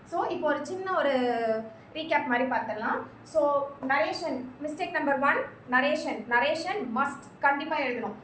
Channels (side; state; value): both; identical; correlation 1.00